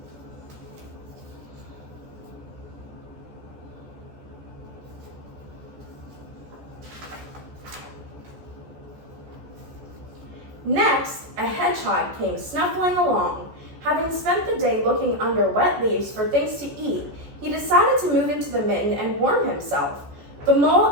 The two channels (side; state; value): left; late; 14 ms